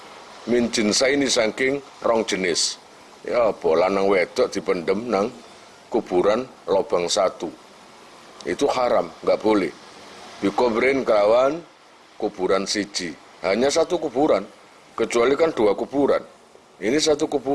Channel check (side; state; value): both; identical; correlation 1.00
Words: min jinsaini saking rong jenis. Ya apa lanang wedok dipendem nang kuburan lobang satu. Itu haram, enggak boleh. Dikubrin kelawan kuburan siji. Hanya satu kuburan, kecuali kan dua kuburan. Ini satu